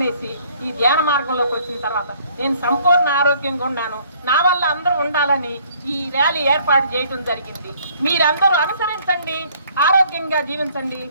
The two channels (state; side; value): inverted; both; correlation -0.60